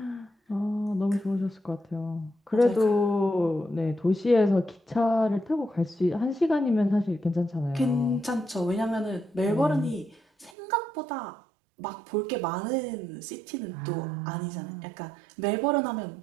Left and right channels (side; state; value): left; drops out; at 10.5 s